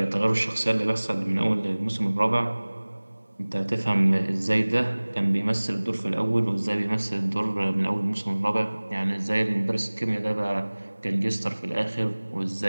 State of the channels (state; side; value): inverted; both; correlation -1.00